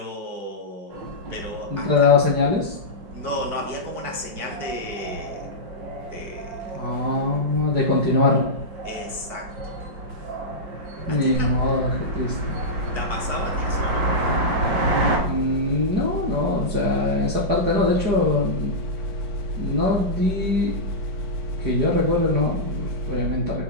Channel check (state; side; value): late; left; 4.7 ms